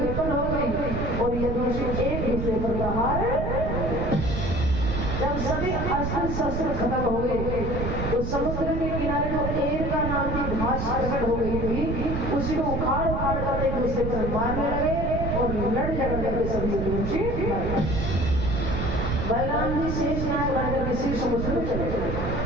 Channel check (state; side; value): noise; right; rumble, 2 dB below the sound